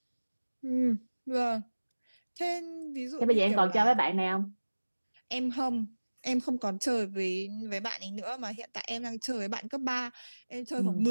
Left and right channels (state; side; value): inverted; both; correlation -1.00